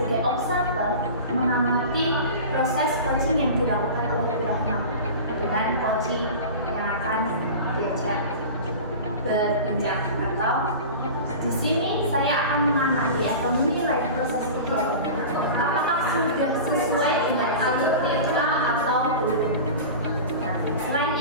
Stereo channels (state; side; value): inverted; both; correlation -0.33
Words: observer mengamati proses coaching yang dilakukan oleh Bu Ratna dengan coaching yang akan diajak berbincang, atau di sini saya akan mengamati atau menilai proses kegiatannya apakah sudah sesuai dengan alur TK atau belum. Nah, selain